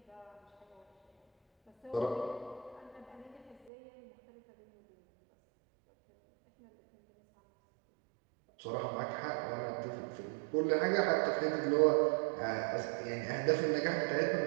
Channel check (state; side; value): drops out; left; at 3.7 s